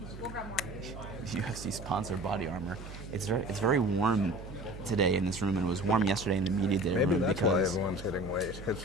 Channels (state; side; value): noise; right; hum, 12 dB below the sound